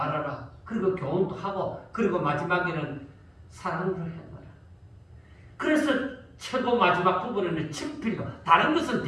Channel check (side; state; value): both; identical; correlation 1.00